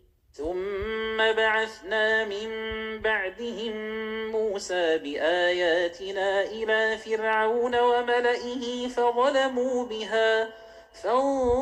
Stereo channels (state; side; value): identical; both; correlation 1.00